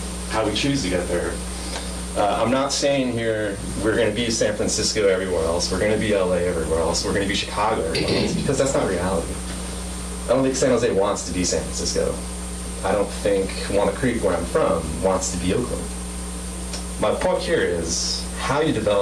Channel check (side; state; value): both; identical; correlation 1.00